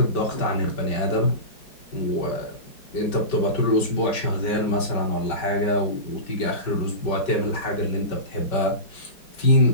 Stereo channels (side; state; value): right; late; 5.2 ms